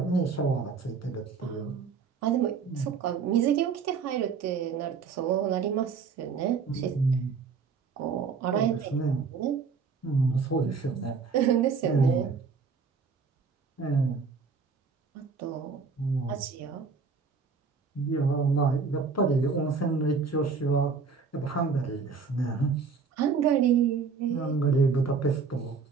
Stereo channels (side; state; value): left; quieter; 5.3 dB